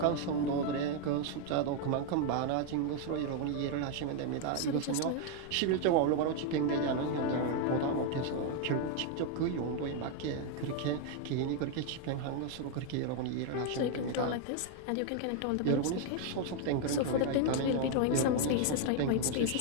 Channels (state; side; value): different; both; correlation 0.00